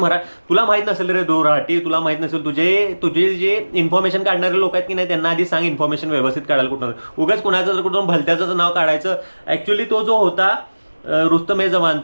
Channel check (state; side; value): inverted; both; correlation -1.00